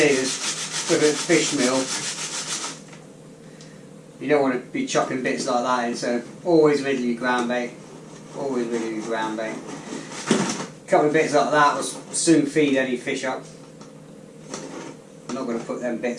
with a fish meal, you don't want to be chopping bits like that in, so always riddle your ground bait. Always riddle your ground bait. A couple of bits like that will soon feed any fish up. I'm not going to put them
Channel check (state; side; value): identical; both; correlation 1.00